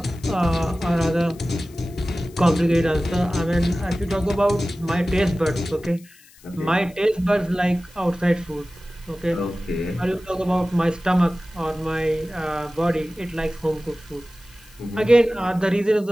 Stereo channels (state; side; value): noise; left; hiss, 25 dB below the sound